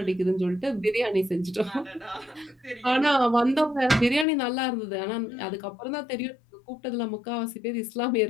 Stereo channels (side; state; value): right; drops out; at 4.2 s